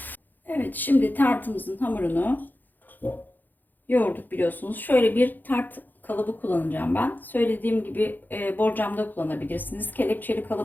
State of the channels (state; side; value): late; right; 0.087 ms